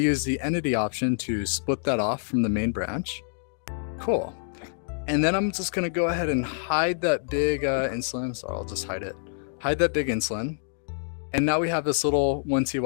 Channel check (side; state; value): right; silent; digital silence